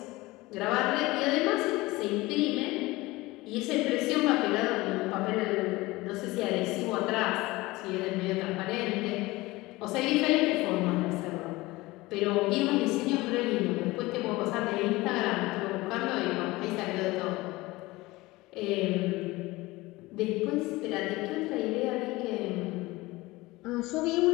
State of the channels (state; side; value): quieter; right; 20.6 dB